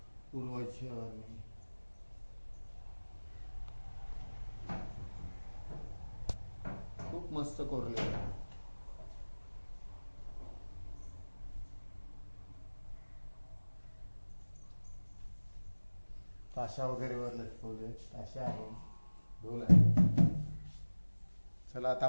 पूर्वजांनी. खूप मस्त कोरलेलं आहे. ताशा वगैरे वर लटकवले, ताशा आहे, ढोल आहे. चला आता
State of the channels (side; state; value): both; inverted; correlation -1.00